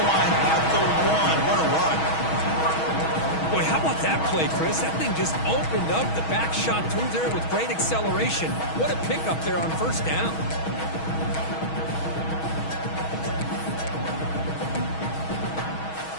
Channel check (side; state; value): right; late; 6.3 ms